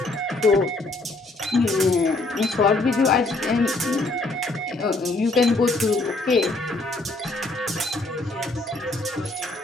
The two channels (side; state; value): right; quieter; 3.1 dB